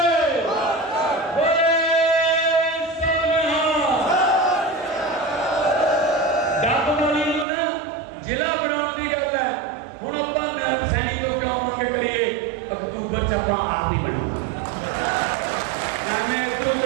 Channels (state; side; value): drops out; left; at 7.5 s